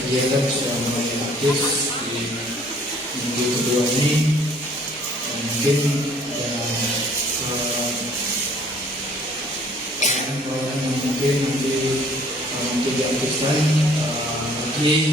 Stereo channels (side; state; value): both; normal; correlation 0.57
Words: sudah mulai aktif di minggu kedua ini, dan mungkin ada pelayanan yang mungkin nanti diaktifkan